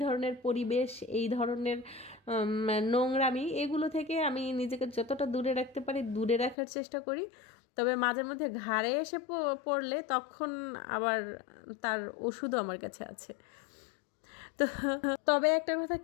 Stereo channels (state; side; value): drops out; right; at 6.6 s